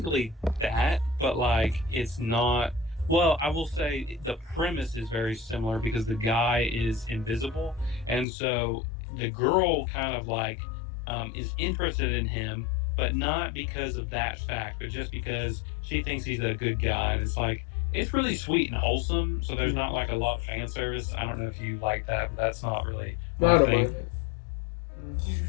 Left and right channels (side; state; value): right; drops out; at 8.2 s